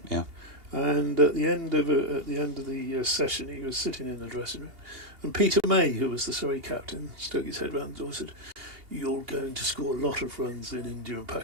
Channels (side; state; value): left; late; 2.8 ms